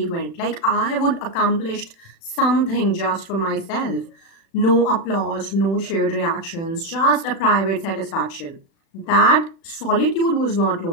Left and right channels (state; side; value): late; right; 36 ms